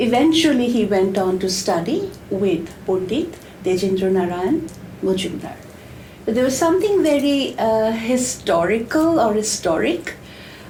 he went on to study with Pandit Tejendra Narayan Mazumdar. But there was something very historical or historic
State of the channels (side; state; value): both; identical; correlation 1.00